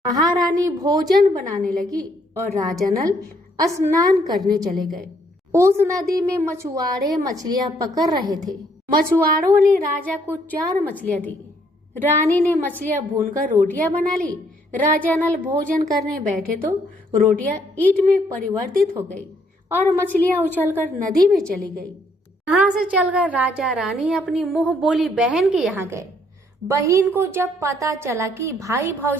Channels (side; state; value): both; normal; correlation 0.68